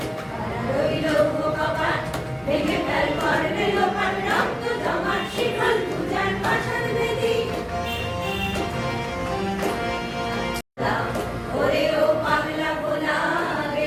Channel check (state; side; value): identical; both; correlation 1.00